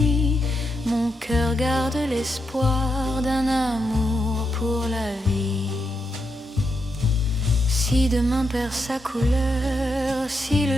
Mon cœur garde l'espoir d'un amour pour la vie. Si demain perd sa couleur, si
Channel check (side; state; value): both; normal; correlation 0.82